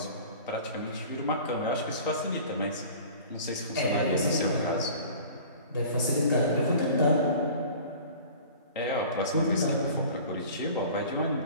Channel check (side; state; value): both; inverted; correlation -0.43